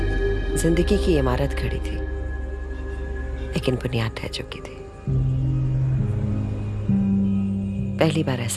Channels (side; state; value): both; identical; correlation 1.00